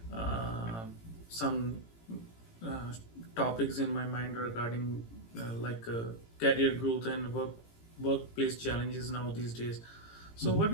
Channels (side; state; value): right; late; 18 ms